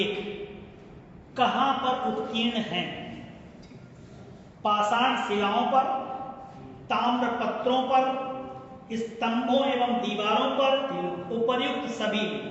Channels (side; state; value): both; identical; correlation 1.00